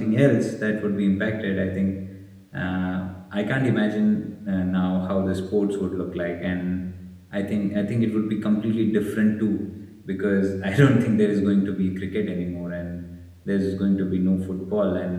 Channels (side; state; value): both; identical; correlation 1.00